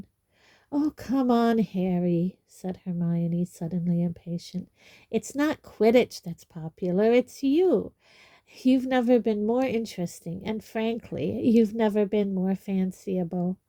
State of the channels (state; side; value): identical; both; correlation 1.00